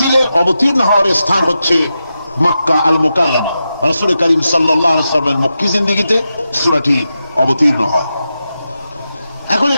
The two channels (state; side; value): inverted; both; correlation -0.89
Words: অবতীর্ণ হওয়ার স্থান হচ্ছে মক্কা আল মুকাররমা। রাসূল করিম সাল্লাল্লাহু আলাইহি ওয়াসাল্লামের মক্কি জিন্দেগিতে সূরাটি অবতীর্ণ হয়। এখন